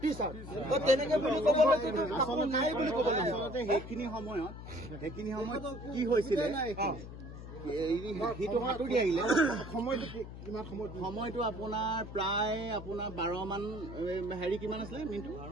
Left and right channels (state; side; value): noise; left; hum, 12 dB below the sound